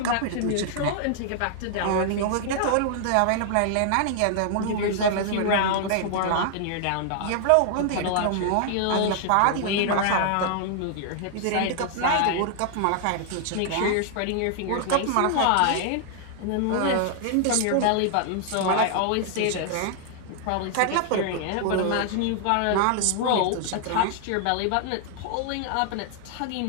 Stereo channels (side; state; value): both; different; correlation 0.00